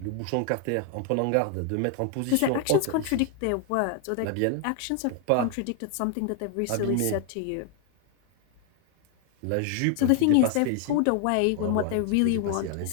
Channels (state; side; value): different; both; correlation 0.00